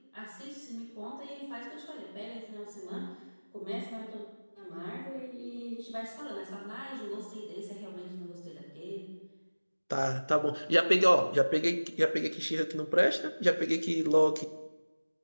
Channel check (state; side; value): inverted; both; correlation -1.00